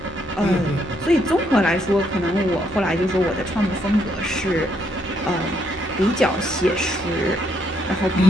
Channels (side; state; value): both; normal; correlation 0.73